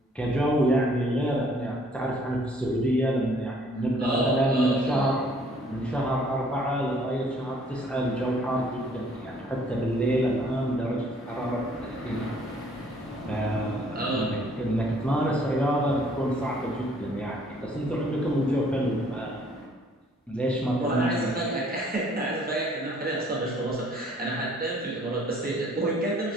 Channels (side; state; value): both; normal; correlation 0.60